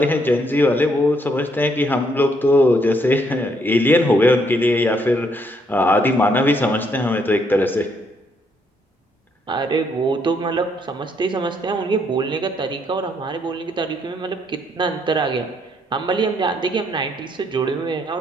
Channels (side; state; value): both; normal; correlation 0.71